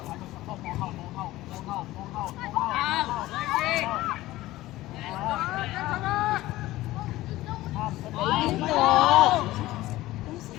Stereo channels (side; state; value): right; quieter; 16.9 dB